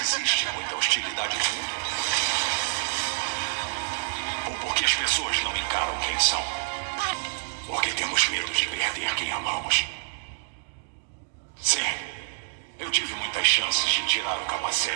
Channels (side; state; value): left; silent; digital silence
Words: muita hostilidade no mundo. Ou porque as pessoas não encaram quem são. Porque temos medo de perder quem amamos. Sim, eu tive muitas chances de tirar o